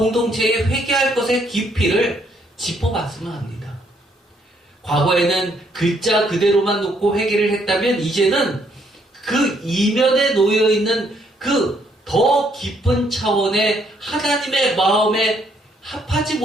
회개할 것의 깊이를 짚어봤으면 합니다. 과거에는 글자 그대로만 놓고 회개를 했다면 이제는 그 이면에 놓여있는 그 더 깊은 차원의 하나님의 마음에 합하지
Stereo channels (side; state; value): both; normal; correlation 0.70